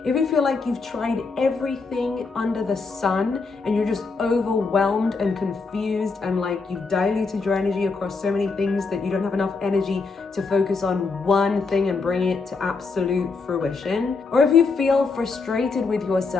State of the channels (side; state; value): right; quieter; 4.3 dB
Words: if you feel like you've tried everything under the sun and you're just overwhelmed and confused and like you've diluted your energy across so many things that you don't have enough energy to focus on one thing and bring it to absolute fruition, or if you feel frustrated with